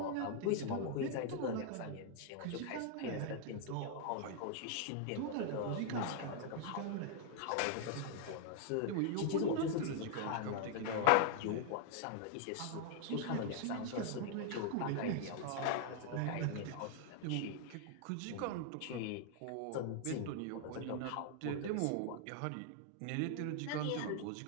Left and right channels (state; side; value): different; both; correlation 0.00